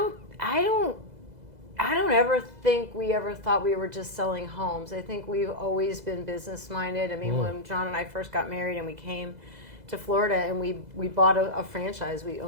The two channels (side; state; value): left; late; 2.0 ms